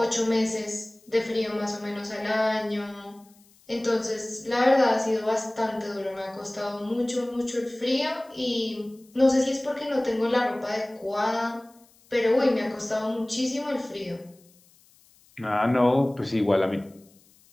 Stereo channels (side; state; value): left; noise; hiss, 30 dB below the sound